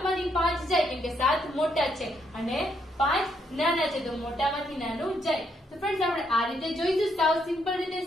માંથી 5 જાય કેમ કે 7 મોટા છે અને 5 નાના છે. તો મોટામાંથી નાનું જાય. તો ફ્રેન્ડ્સ, આપણે આ રીતે જોઈશું સાવ સિમ્પલ રીતે.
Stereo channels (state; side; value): normal; both; correlation 0.75